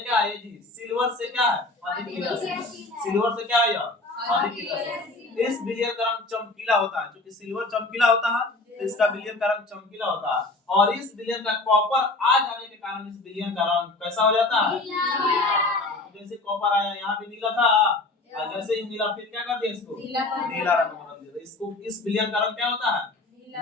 क्या है जी, सिल्वर से क्या है, अधिक क्रियाशील, सिल्वर से क्या है यह अधिक क्रियाशील। इस विलयन का रंग चमकीला होता है, क्योंकि सिल्वर चमकीला होता है तो इसका विलयन का रंग चमकीला होता है, और इस विलयन का कॉपर आ जाने के कारण इस विलयन का रंग कैसा हो जाता है, नीला। जैसे कॉपर आया यहाँ भी नीला था, और जैसे ही नीला फिर क्या कर दिया इसको नीला रंग बदल दिया, इसको इस विलयन का रंग क्या होता है,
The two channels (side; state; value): right; quieter; 3.1 dB